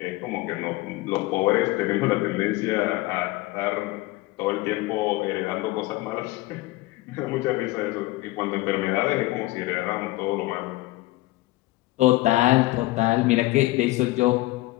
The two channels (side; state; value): right; quieter; 19.8 dB